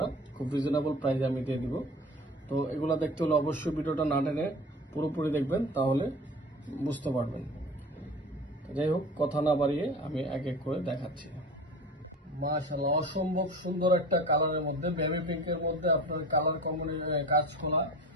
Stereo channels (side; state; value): both; normal; correlation 0.37